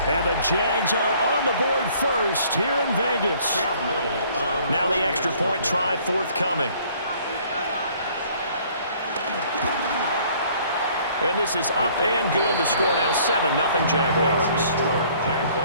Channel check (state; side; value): inverted; both; correlation -0.58